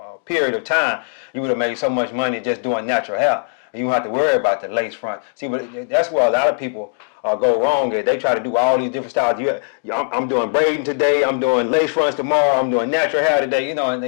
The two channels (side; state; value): right; silent; digital silence